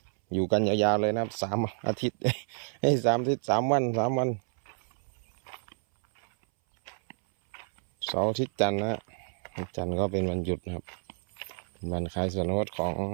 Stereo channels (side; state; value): left; silent; 58 dB below the other